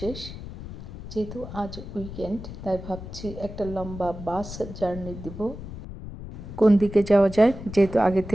যেহেতু আজ উইকেন্ড, তাই ভাবছি একটা লম্বা বাস জার্নি দিব। কোন দিকে যাওয়া যায়, যেহেতু আগে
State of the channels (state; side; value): noise; left; rumble, 11 dB below the sound